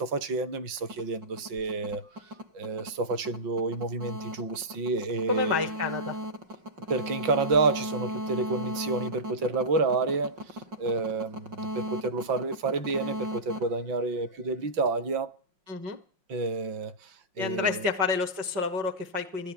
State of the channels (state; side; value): late; left; 5.5 ms